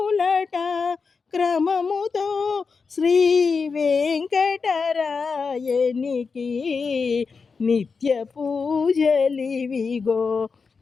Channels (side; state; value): right; quieter; 5.0 dB